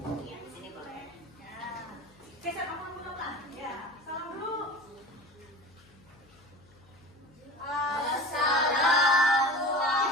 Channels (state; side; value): noise; left; hum, 27 dB below the sound